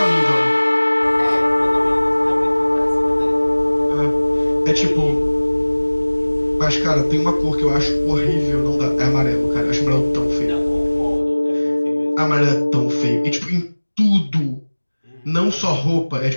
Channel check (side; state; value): both; inverted; correlation -1.00